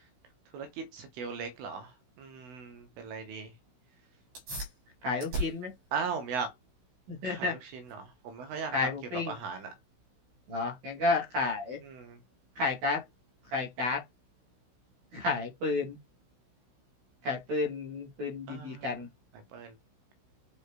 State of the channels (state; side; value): late; left; 16 ms